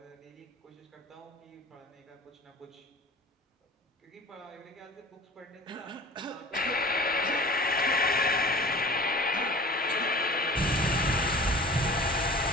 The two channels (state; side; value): normal; both; correlation 0.41